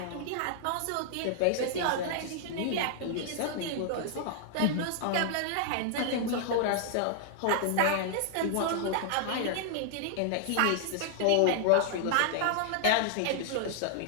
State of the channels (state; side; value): different; both; correlation -0.01